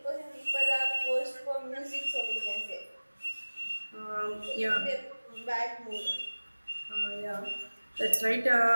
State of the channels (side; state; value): both; inverted; correlation -1.00